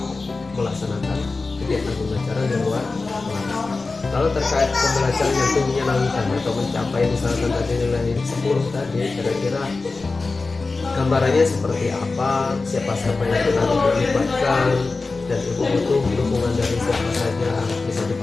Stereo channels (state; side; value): quieter; right; 3.8 dB